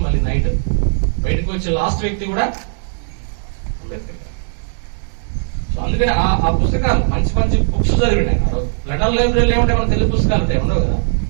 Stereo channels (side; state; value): left; silent; digital silence